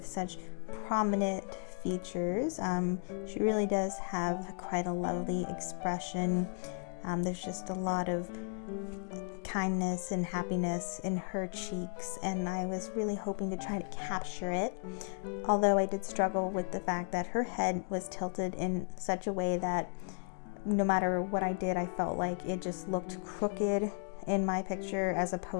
such prominent features. She really does have quite a lovely expression. There's just a lot of kindness and happiness in her cheeks, and I was really hoping to try to capture it, although I did struggle with the fact that her head was tilted in such a way that no matter what I did, I felt like it just looked crooked in my picture as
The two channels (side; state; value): right; silent; 55 dB below the other